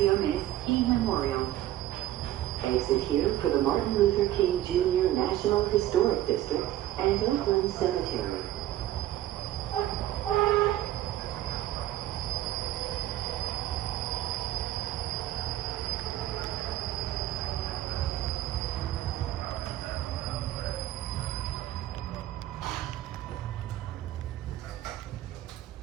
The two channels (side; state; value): left; quieter; 13.8 dB